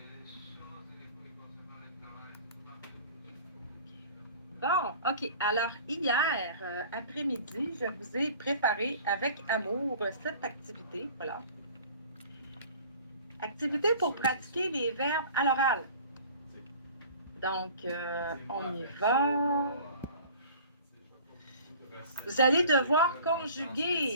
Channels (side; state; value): both; inverted; correlation -0.46